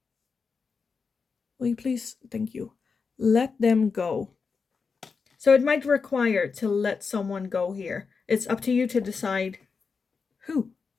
Will you please? Thank you. Let them go. So it might require to let someone go here. It's up to you to decide who.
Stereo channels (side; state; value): right; quieter; 5.1 dB